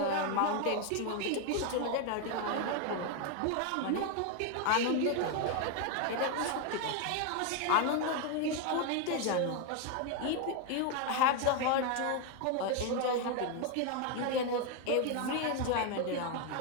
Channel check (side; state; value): both; different; correlation 0.01